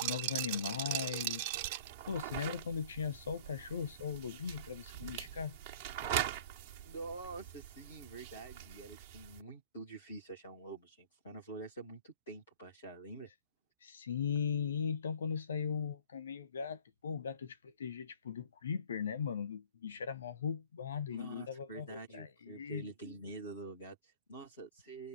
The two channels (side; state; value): both; inverted; correlation -0.48